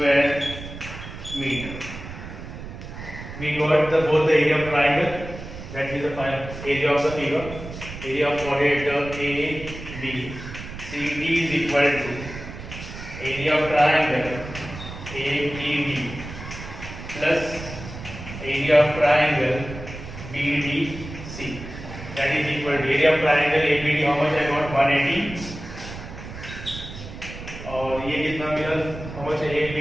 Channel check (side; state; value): right; noise; rumble, 11 dB below the sound